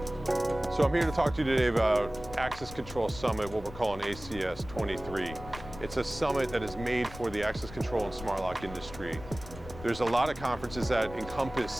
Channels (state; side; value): noise; left; rumble, 13 dB below the sound